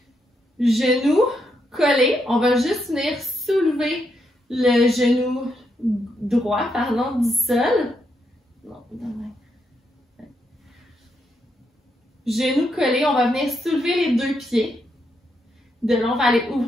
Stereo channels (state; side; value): normal; both; correlation 0.80